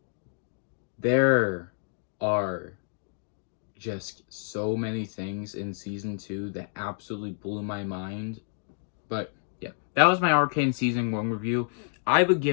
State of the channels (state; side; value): silent; right; digital silence